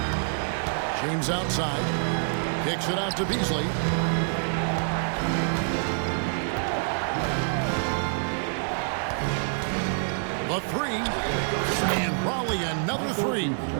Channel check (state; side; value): silent; left; 60 dB below the other